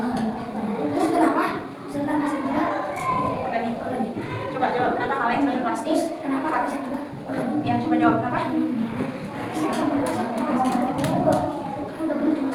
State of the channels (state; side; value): identical; both; correlation 1.00